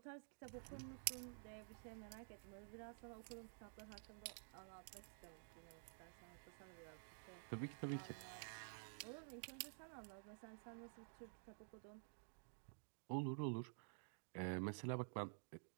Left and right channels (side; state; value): left; silent; digital silence